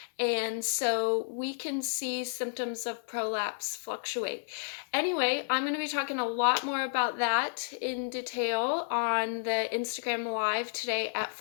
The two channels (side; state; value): right; silent; digital silence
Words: and so we can see symptoms of prolapse fluctuate. Anyway, I'm going to be talking a lot more about that in detail on the Instagram live today at